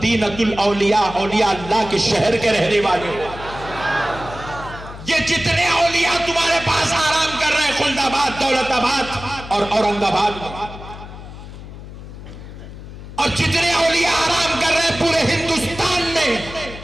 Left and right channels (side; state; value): left; noise; hum, 13 dB below the sound